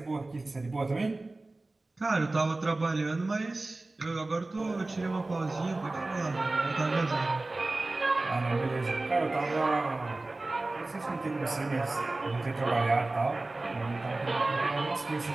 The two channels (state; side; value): quieter; left; 3.0 dB